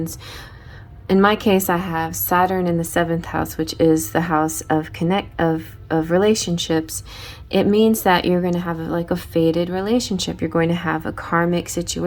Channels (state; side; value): identical; both; correlation 1.00